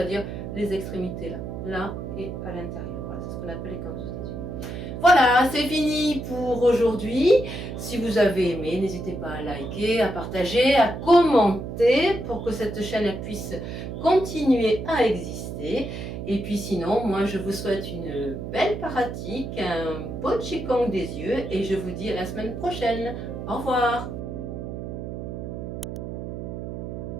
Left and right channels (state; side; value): noise; right; hum, 7 dB below the sound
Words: les extrémités là et à l'intérieur. Voilà, c'est ce qu'on appelle les canthus des yeux. Voilà, c'est fini pour aujourd'hui. Si vous avez aimé, n'hésitez pas à liker, à partager, à commenter pour que cette chaîne puisse continuer à exister. Et puis sinon, moi je vous souhaite une belle pratique, un beau Qigong des yeux et je vous dis à la semaine prochaine. Au revoir.